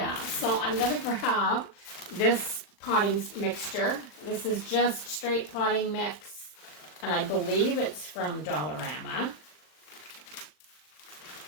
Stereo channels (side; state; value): right; late; 39 ms